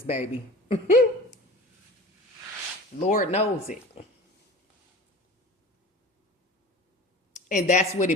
baby. Lord knows it. And that's what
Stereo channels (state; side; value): normal; both; correlation 0.37